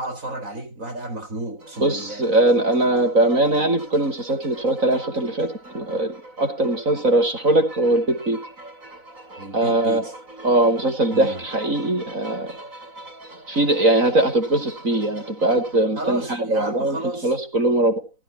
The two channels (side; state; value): left; late; 4.0 ms